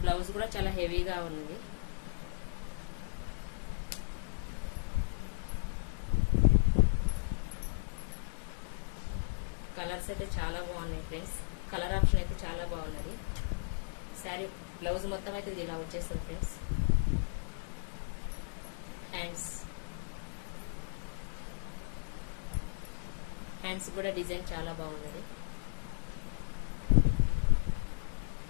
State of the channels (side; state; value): right; silent; digital silence